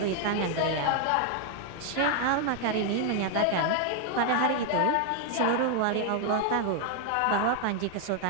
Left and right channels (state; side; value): different; both; correlation 0.00